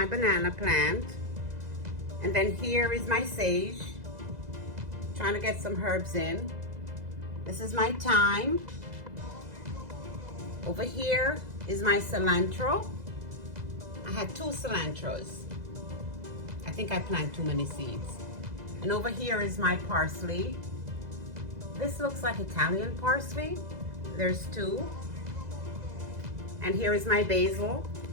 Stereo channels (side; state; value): left; late; 2.0 ms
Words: banana plant. And then here is my sage. Trying to get some herbs in. This is my thyme. Over here is my cilantro. I had 2 cilantros. I think I planted too many seeds. And over here is my parsley. This looks like Italian parsley. There's 2. And here is my basil.